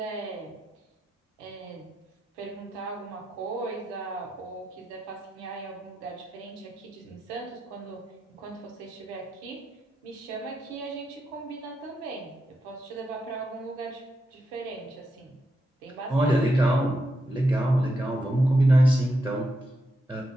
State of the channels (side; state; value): both; normal; correlation 0.85